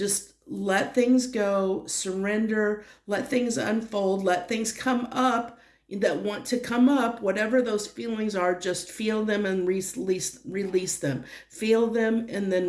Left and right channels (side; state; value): both; identical; correlation 1.00